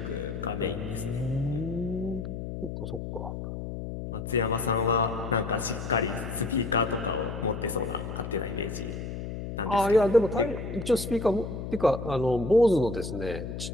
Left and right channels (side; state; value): left; noise; hum, 7 dB below the sound